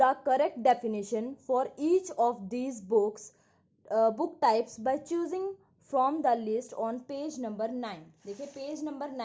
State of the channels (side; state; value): both; identical; correlation 1.00